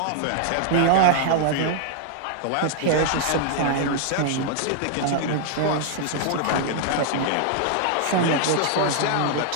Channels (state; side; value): different; both; correlation 0.00